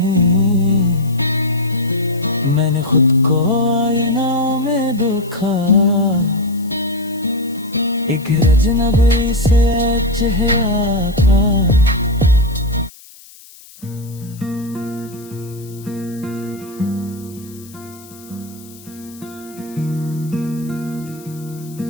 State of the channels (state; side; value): noise; left; hiss, 22 dB below the sound